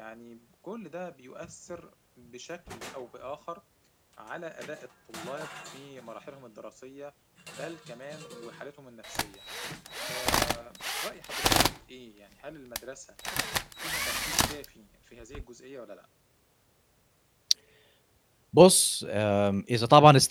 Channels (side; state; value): both; identical; correlation 1.00